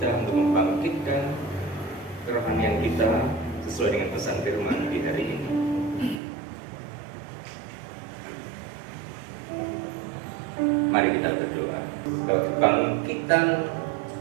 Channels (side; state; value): left; drops out; at 6.2 s